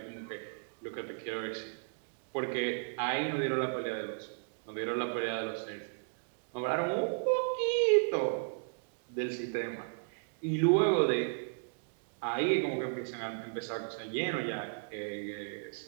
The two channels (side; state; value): left; silent; digital silence